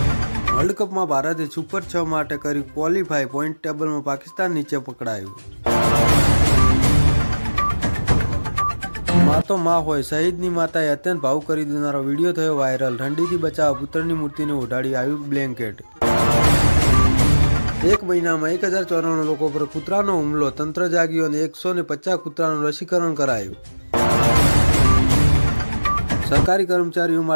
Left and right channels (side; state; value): both; inverted; correlation -1.00